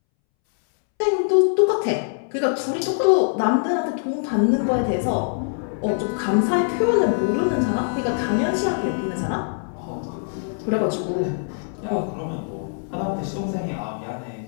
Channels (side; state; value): right; silent; 63 dB below the other